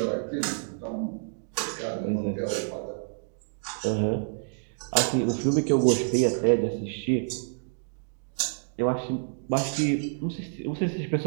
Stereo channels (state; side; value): silent; left; digital silence